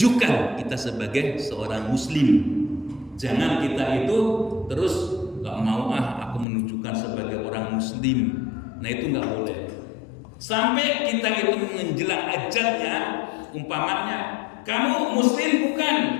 kita sebagai seorang muslim. Jangan kita itu terus gak mau aku menunjukkan sebagai orang muslim. Nah itu gak boleh. Sampai kita itu menjelang ajalnya, umpamanya kamu muslim bukan?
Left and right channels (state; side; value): drops out; right; at 6.5 s